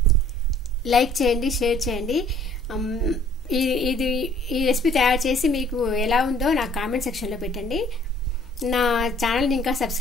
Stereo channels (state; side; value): noise; left; hum, 29 dB below the sound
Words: లైక్ చేయండి, షేర్ చేయండి. ఈ రెసిపీ తయారు చేసి మీకు ఎలా ఉందో నాకు కామెంట్ సెక్షన్లో పెట్టండి. నా ఛానల్ని ఇంకా